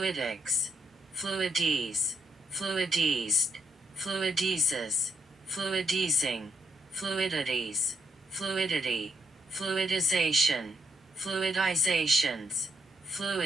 fluides, fluidized, fluidizes, fluidizing, fluidities, fluidity, fluidization, fluidizations,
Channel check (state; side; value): normal; both; correlation 0.77